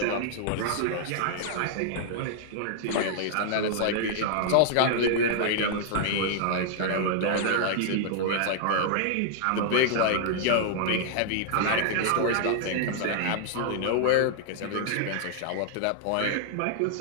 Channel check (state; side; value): different; both; correlation -0.01